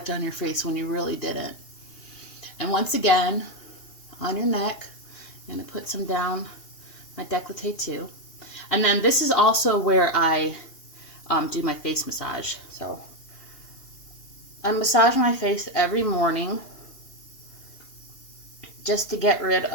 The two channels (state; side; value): late; right; 2.8 ms